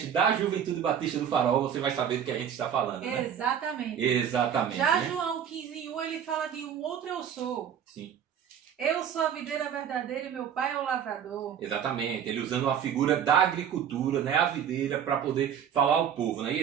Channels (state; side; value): quieter; left; 8.7 dB